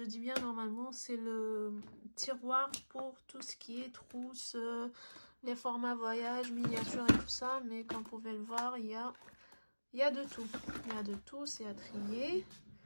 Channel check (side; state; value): both; inverted; correlation -1.00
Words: dis bien normalement, c'est le tiroir pour tout ce qui est trousse, les formats voyage, miniature et tout ça. Mais comme vous pouvez le voir, il y a de tout. Il y a de tout, c'est à trier.